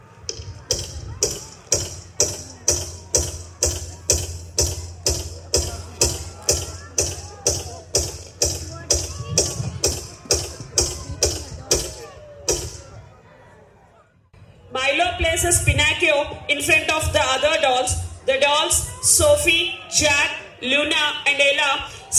Milo places Pinocchio in front of the other dolls. The dolls, Sophie, Jack, Luna, and Ella,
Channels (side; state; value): both; identical; correlation 1.00